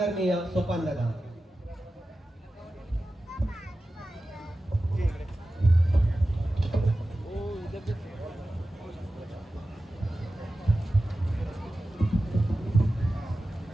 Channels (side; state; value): both; normal; correlation 0.94